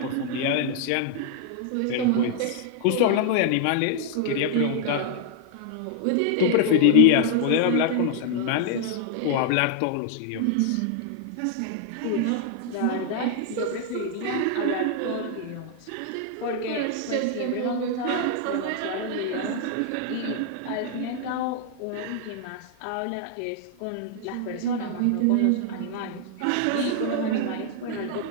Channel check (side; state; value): both; different; correlation -0.01